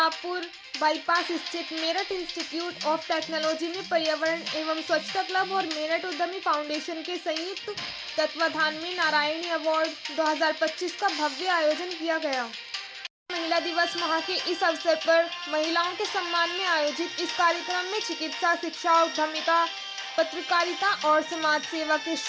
बाईपास स्थित मेरठ इंस्टीट्यूट ऑफ टेक्नोलॉजी में पर्यावरण एवं स्वच्छता क्लब और मेरठ उद्यमी फाउंडेशन के संयुक्त तत्वाधान में नारायणी अवार्ड 2025 का भव्य आयोजन किया गया। महिला दिवस माह के इस अवसर पर महिलाओं के सम्मान में आयोजित इस कार्यक्रम में चिकित्सा, शिक्षा, उद्यमिता, पत्रकारिता और समाज सेवा के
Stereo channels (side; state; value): both; identical; correlation 1.00